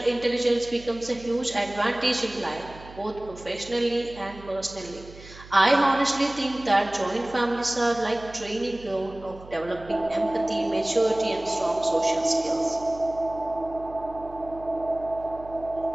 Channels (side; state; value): right; noise; hum, 18 dB below the sound